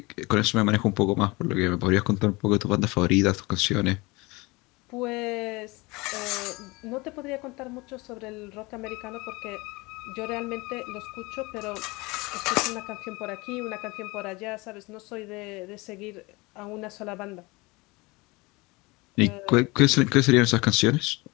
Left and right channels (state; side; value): quieter; right; 24.1 dB